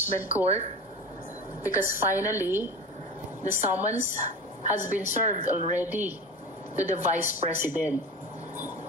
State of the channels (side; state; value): both; normal; correlation 0.31